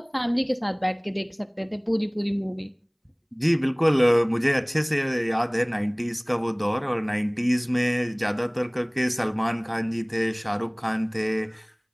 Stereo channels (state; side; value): identical; both; correlation 1.00